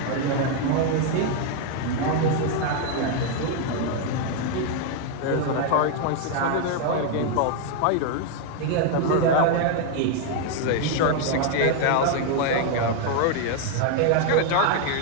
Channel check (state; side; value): different; both; correlation 0.00